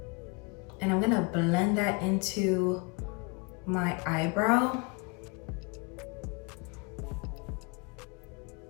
And I'm gonna blend that into my eyebrow.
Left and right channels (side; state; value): right; quieter; 29.8 dB